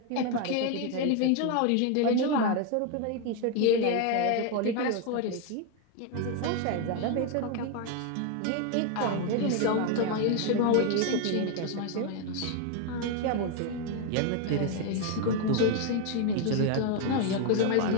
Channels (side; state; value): both; different; correlation 0.01